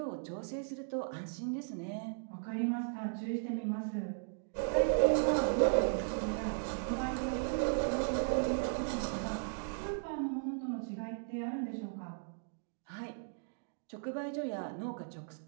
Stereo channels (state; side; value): silent; left; digital silence